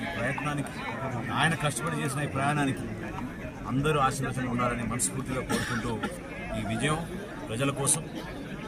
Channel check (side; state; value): both; identical; correlation 1.00